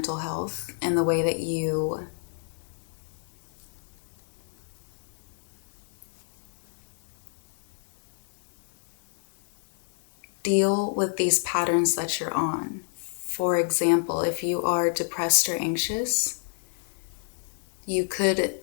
health and the way that you deal with these patterns that you're on. For example, if you are depressed or anxious, you could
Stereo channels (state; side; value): silent; right; 56 dB below the other